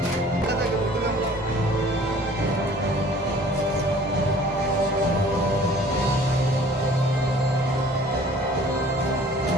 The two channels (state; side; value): normal; both; correlation 0.51